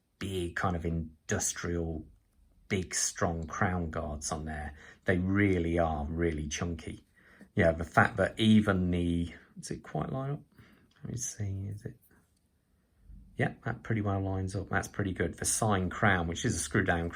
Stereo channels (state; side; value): identical; both; correlation 1.00